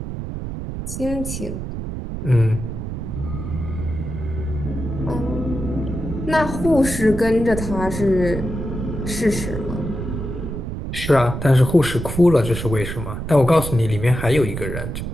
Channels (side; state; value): right; noise; rumble, 6 dB below the sound